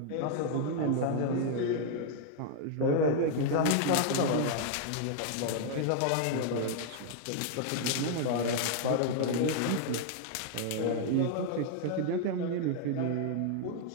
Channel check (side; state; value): both; different; correlation 0.00